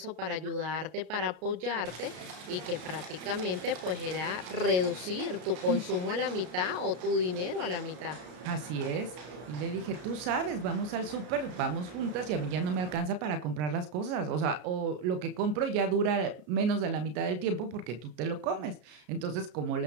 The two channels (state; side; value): late; left; 33 ms